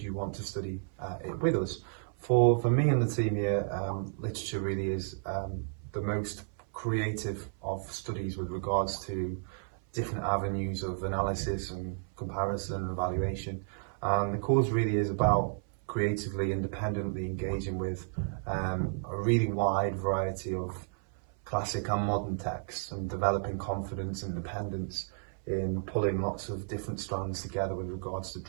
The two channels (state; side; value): silent; left; 56 dB below the other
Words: you want to study it with us? For me and the team here, literature really is the most creative of studies with regards to different avenues of analysis and comparison and evaluation. And the course really is about creatively, independently engaging with a really wide variety of classic and modern texts and developing confidence and independence in pulling lots of different strands together with regards to